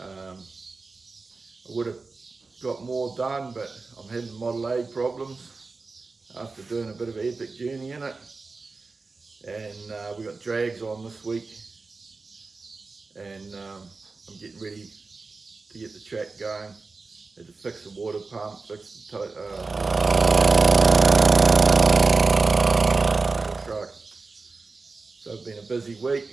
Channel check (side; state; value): left; quieter; 4.0 dB